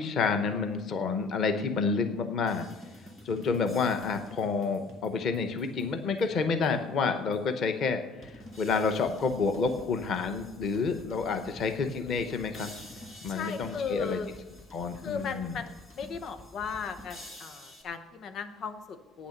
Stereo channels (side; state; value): right; quieter; 4.5 dB